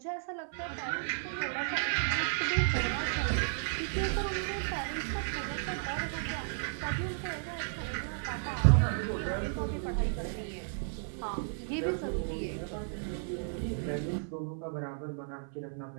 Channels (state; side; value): silent; left; 55 dB below the other